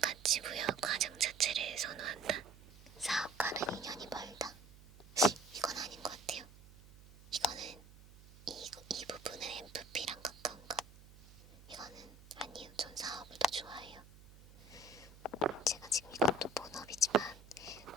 부여 과정 자체를 선호한다. 사업과는 인연이 멀다. 이건 아닌 것 같아요. 이거는 이 부분은 MFP랑 가까운가? 이거는 아니에요. 전 사업을 더 좋아해요. 제가 지금 이것도 본업이지만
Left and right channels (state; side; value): noise; right; hum, 20 dB below the sound